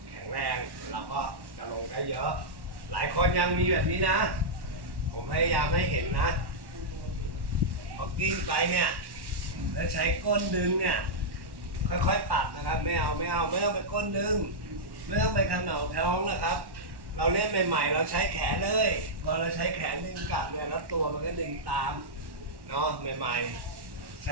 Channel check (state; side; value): late; left; 1.1 ms